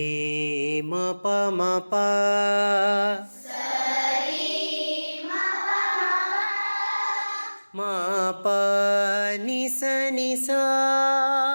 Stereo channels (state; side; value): inverted; both; correlation -1.00